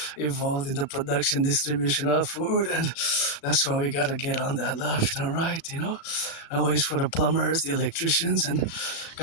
involved in the production, distribution of food. and that's why we gotta get on that left and right, Always for the plumbers, the electricians, and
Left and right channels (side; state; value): right; late; 37 ms